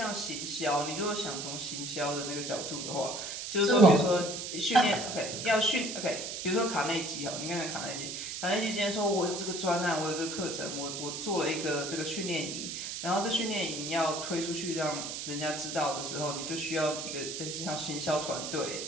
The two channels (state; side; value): noise; right; hiss, 5 dB below the sound